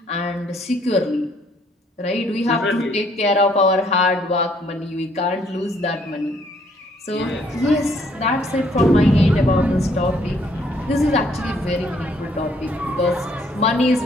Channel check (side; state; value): both; normal; correlation 0.65